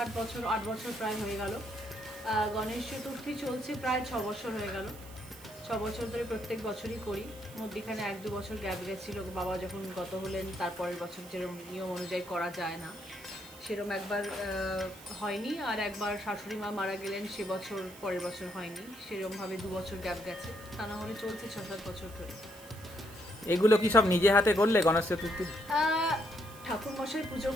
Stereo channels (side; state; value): right; noise; hiss, 19 dB below the sound